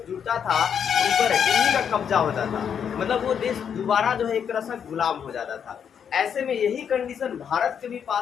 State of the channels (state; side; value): quieter; right; 7.8 dB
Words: जुड़ता था उन पर इन्हीं का कब्जा होता था। मतलब वो देश दोबारा जो है एक तरह से गुलाम हो जाता था। ऐसे में यही कंडीशन भारत के भी